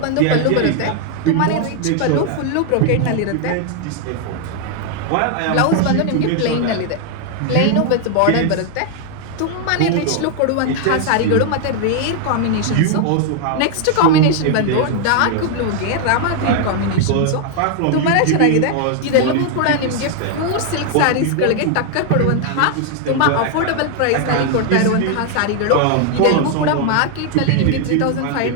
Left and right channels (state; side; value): different; both; correlation 0.00